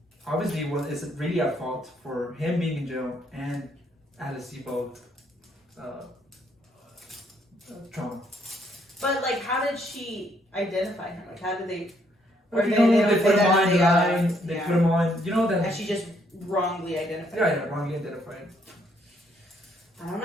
obviously, is really at fault for him being in jail and Alice Sebold trauma. But like, how did she identify him? Like, how did they? Or they put him on the line. They put him on. That. And she just wrongly identified. Yeah, wrongly identified. I don't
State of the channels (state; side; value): normal; both; correlation 0.70